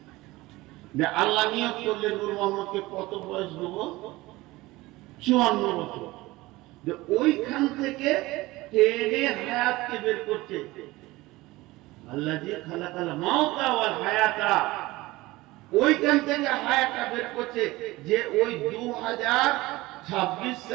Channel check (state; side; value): quieter; left; 19.8 dB